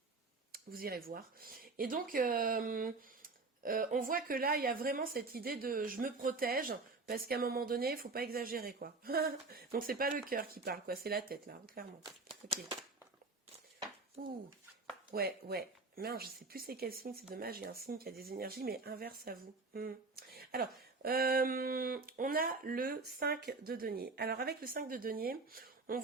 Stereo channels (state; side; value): quieter; left; 3.8 dB